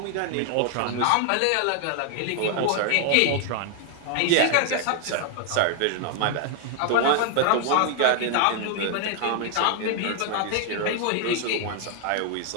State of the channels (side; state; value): both; different; correlation 0.00